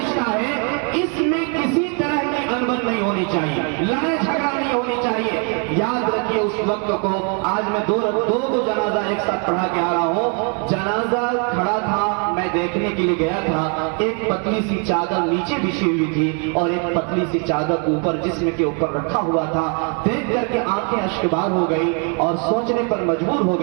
ہے، اس میں کسی طرح کی انبن نہیں ہونی چاہیے، لڑائی جھگڑا نہیں ہونی چاہیے۔ یاد رکھیے اس وقت کو آج میں دو کو جنازہ ایک ساتھ پڑھا کے آ رہا ہوں. جنازہ کھڑا تھا, میں دیکھنے کے لیے گیا تھا. ایک پتلی سی چادر نیچے بچھی ہوئی تھی اور ایک پتلی سی چادر اوپر جسم کے اوپر رکھا ہوا تھا. دیکھ کر کے آنکھیں اشکبار ہو گئی اور سوچنے پر مجبور ہو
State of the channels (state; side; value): quieter; left; 38.3 dB